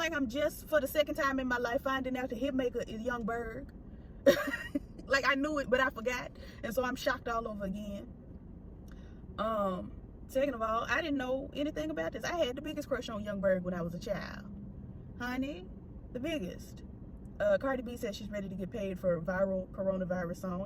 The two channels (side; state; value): both; identical; correlation 1.00